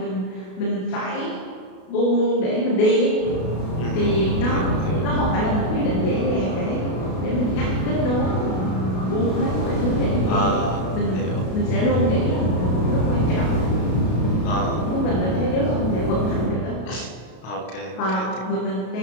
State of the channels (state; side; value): late; right; 32 ms